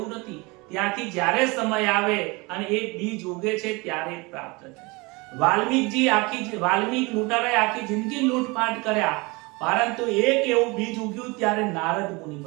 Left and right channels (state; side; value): quieter; left; 25.9 dB